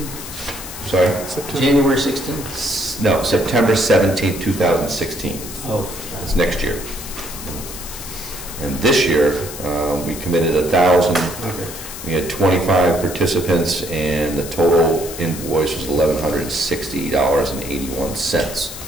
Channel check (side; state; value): left; noise; hiss, 11 dB below the sound